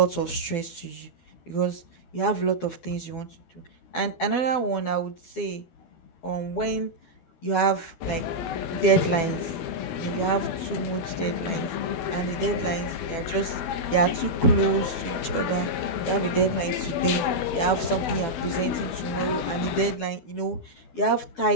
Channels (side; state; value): right; late; 12 ms